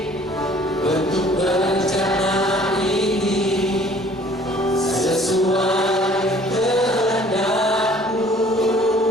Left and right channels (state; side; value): normal; both; correlation 0.54